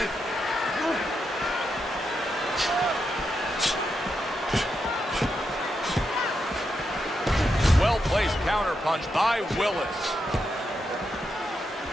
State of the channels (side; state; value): both; normal; correlation 0.84